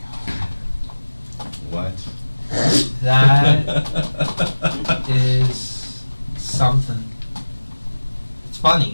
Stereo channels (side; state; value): both; inverted; correlation -1.00